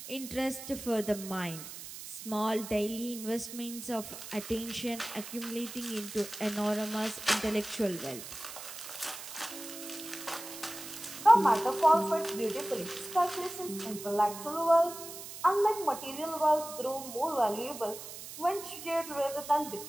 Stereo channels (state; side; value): noise; right; hiss, 11 dB below the sound